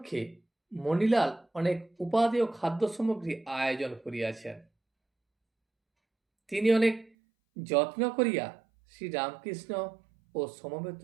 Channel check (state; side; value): drops out; left; at 7.1 s